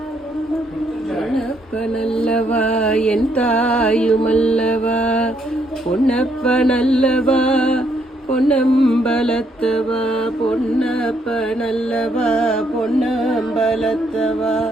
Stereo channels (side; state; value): both; normal; correlation 0.73